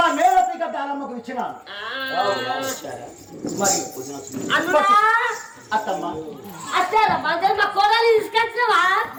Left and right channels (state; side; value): identical; both; correlation 1.00